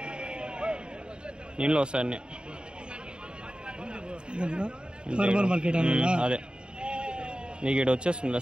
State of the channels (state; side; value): late; left; 0.050 ms